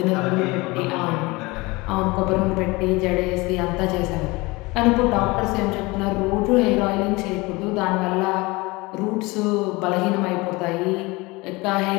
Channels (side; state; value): right; quieter; 23.6 dB